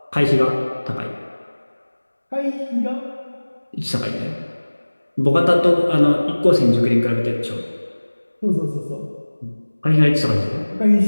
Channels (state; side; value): inverted; both; correlation -1.00